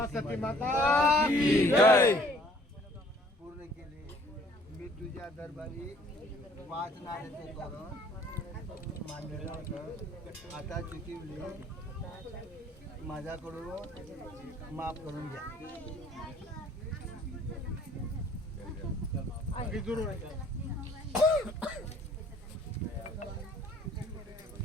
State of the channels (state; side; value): normal; both; correlation 0.58